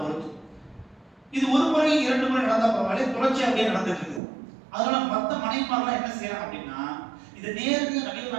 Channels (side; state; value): left; drops out; at 4.2 s